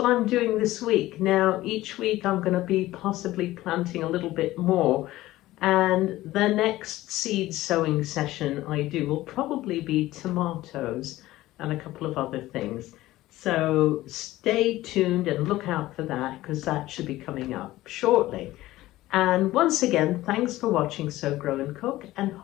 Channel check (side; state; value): right; quieter; 16.5 dB